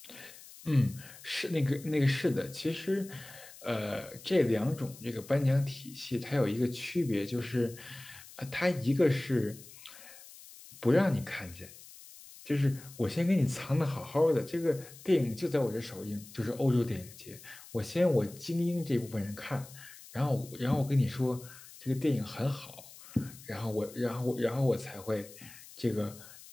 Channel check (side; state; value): left; noise; hiss, 18 dB below the sound